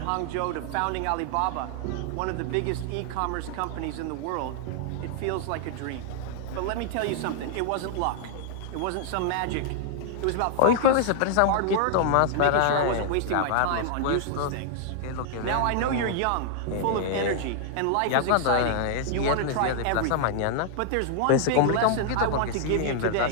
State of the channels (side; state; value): both; different; correlation -0.01